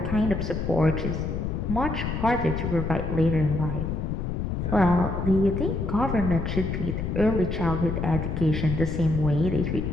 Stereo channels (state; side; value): noise; left; rumble, 2 dB below the sound